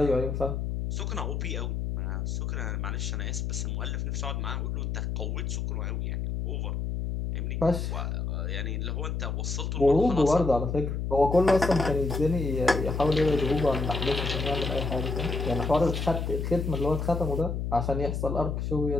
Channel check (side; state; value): left; noise; hum, 2 dB below the sound